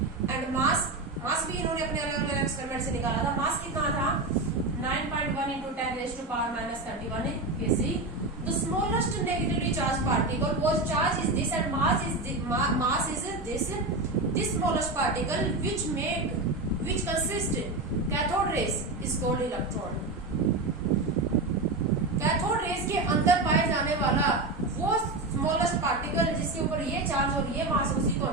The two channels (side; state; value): left; quieter; 3.0 dB